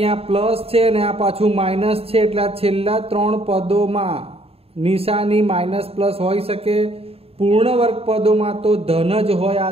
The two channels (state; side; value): late; left; 0.28 ms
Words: પ્લસ છે અને આ પાછું માઇનસ છે. એટલે આ છેલ્લા 3 પદોમાં નિશાની માઇનસ પ્લસ હોઈ શકે. પૂર્ણ વર્ગ પદોમાં તો ધન જ હોય.